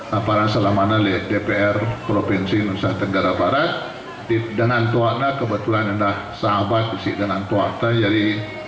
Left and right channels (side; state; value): both; identical; correlation 1.00